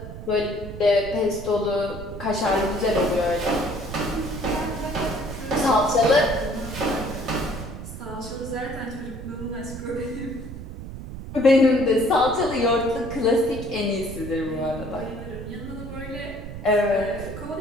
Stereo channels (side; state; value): right; noise; rumble, 10 dB below the sound